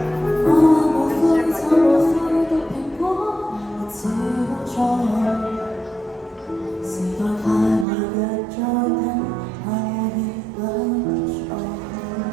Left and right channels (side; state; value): left; drops out; at 7.9 s